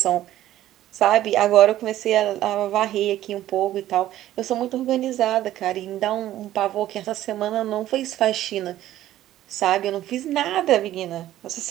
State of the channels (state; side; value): quieter; left; 13.5 dB